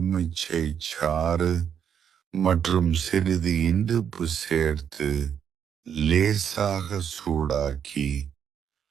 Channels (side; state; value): left; quieter; 8.2 dB